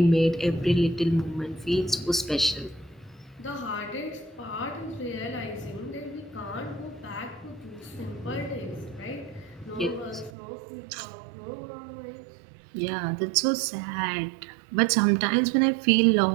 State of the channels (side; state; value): left; drops out; at 10.3 s